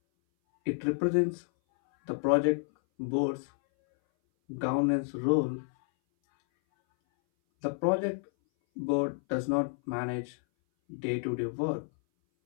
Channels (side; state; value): right; silent; 58 dB below the other